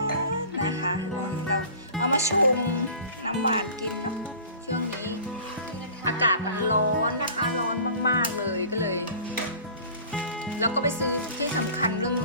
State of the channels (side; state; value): both; inverted; correlation -0.43